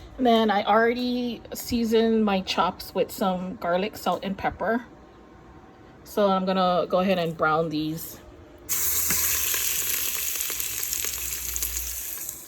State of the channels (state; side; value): identical; both; correlation 1.00